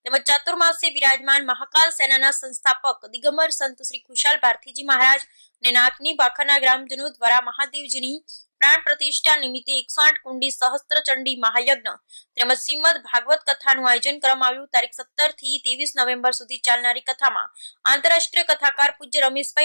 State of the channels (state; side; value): inverted; both; correlation -1.00